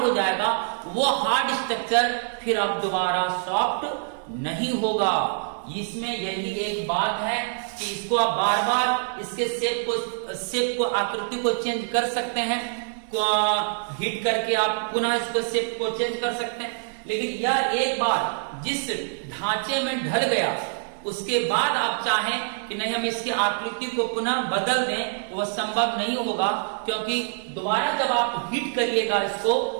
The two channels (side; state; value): left; silent; digital silence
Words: जाएगा वो हार्ड स्ट्रक्चर फिर अब दोबारा सॉफ्ट नहीं होगा। इसमें यही एक बात है कि इसको आप बार बार इसके शेप को आकृति को चेंज कर सकते हैं, हीट करके आप पुनः इसको शेप को चेंज कर सकते हैं। लेकिन यह एक बार जिस ढांचे में ढल गया उसके बाद आप चाहें कि नहीं हम इसकी आकृति को पुनः बदल दें, वह संभव नहीं होगा। क्योंकि दोबारा जब आप हीट करिएगा इसको,